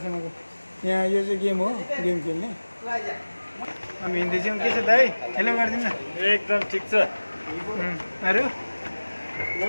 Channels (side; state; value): both; inverted; correlation -1.00